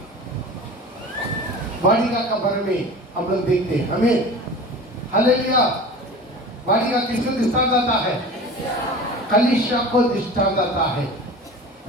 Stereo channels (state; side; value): normal; both; correlation 0.36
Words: वाटिका का बारे में हम लोग देखते हैं। हमें हालेलुया। वाटिका किसको दृष्टांत आता है? कलीसिया को दृष्टांत आता है।